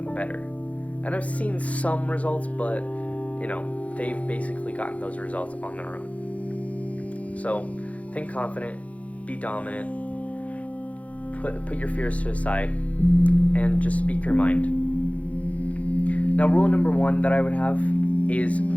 better. And I've seen some results, but they've basically gotten those results on their own. So think confident, be dominant, put your fears to the side, and just speak your mind. Now, rule number 1 that I would have is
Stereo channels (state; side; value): late; right; 0.066 ms